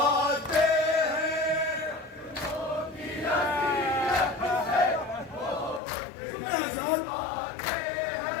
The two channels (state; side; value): drops out; right; at 5.8 s